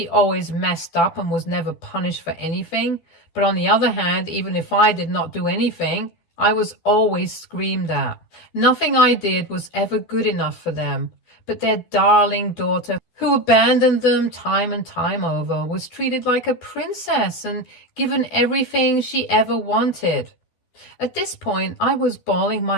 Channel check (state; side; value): late; right; 12 ms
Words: always messed up and was never punished for anything. But on the other hand, even if I did not do anything, I was always screamed at. Nothing I did was ever good enough for them. But their darling daughter, who abandoned them time and time over, was treated like a princess and given everything she ever wanted. At this point, I was bawling